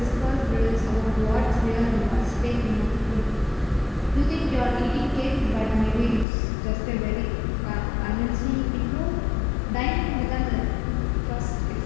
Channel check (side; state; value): right; drops out; at 6.2 s